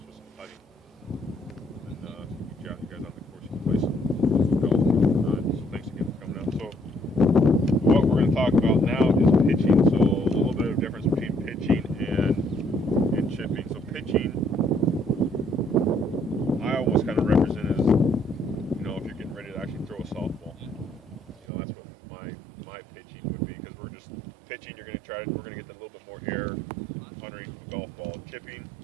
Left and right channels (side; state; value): left; drops out; at 21.5 s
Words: with some putting. And get you guys on the course and play some golf. So thanks again for coming out. So what we're going to talk about now is pitching. So a little bit of difference between pitching and chipping. So pitching, I almost kind of represent as, if you're getting ready to actually throw a softball. That's what my pitching would be, because we're just pitching. We're going to get a little bit more air underneath the golf ball. Chipping,